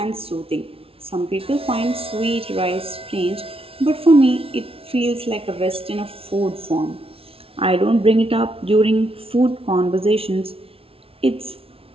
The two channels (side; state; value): left; late; 0.27 ms